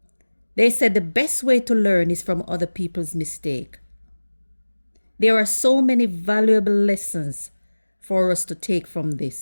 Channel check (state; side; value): inverted; both; correlation -1.00